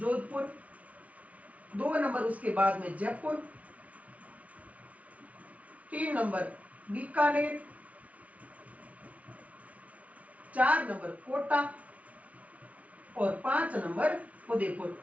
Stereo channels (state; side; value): late; left; 0.068 ms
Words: 2 नंबर उसके बाद में जयपुर, 3 नंबर बीकानेर, 4 नंबर कोटा और 5 नंबर उदयपुर।